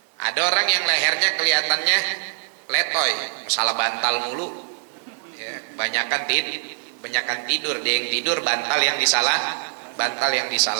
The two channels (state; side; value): silent; left; 63 dB below the other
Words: Ada orang yang lehernya kelihatannya letoy, masalah bantal mulu ya, banyakan tidur, dia yang tidur, bantal yang